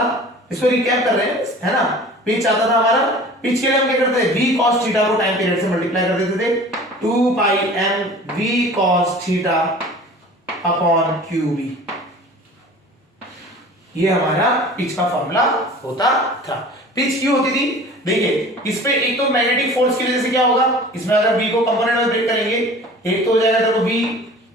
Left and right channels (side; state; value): both; normal; correlation 0.43